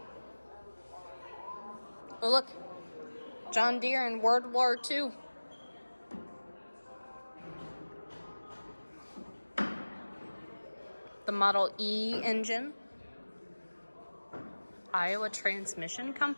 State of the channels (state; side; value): inverted; both; correlation -1.00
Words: Oh, look. John Deere in World War II. The Model E engine. Iowa Transmission